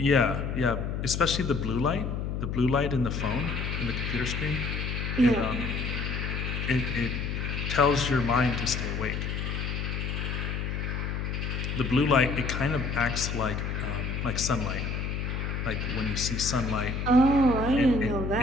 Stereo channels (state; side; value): noise; left; hum, 3 dB below the sound